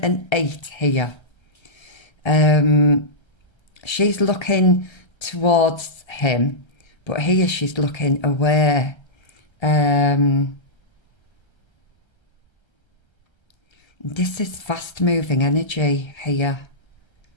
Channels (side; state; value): right; late; 1.3 ms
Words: and 8 here. She's looking towards him, but here she's looking away. This is fast moving energy here.